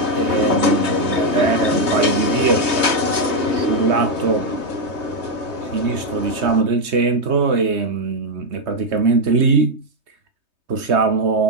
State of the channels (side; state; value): left; late; 3.2 ms